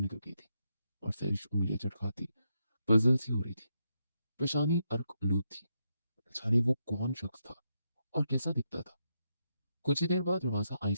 गई थी और सैरिश उंगलियां चटकाती पजल सी हो रही थी। पेशानी अर्क आलूद थी। जाने वो कौन शख्स था और कैसा दिखता था। कुछ ही देर बाद दरवाजा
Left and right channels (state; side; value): inverted; both; correlation -0.82